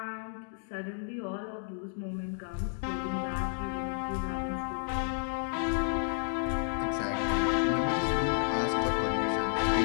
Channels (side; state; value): right; silent; digital silence